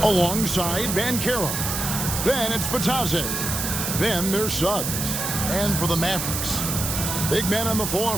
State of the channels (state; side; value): noise; right; hiss, 2 dB below the sound